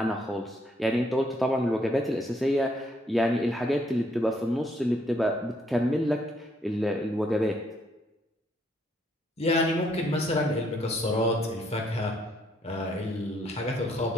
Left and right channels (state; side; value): normal; both; correlation 0.70